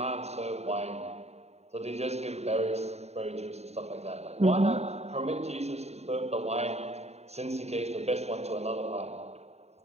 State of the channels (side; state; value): left; late; 0.31 ms